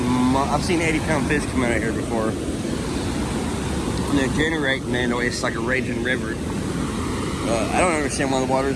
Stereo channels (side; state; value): both; identical; correlation 1.00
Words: 80-pound fish come out of here before. And they're generating, man. It's like a raging river. I don't understand why the